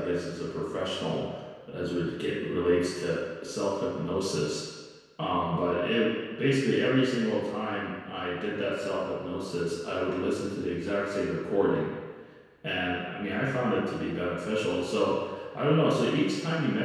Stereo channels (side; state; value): both; identical; correlation 1.00